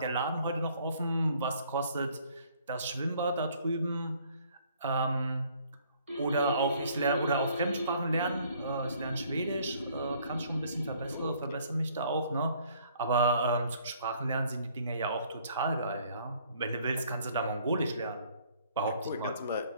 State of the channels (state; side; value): inverted; both; correlation -0.60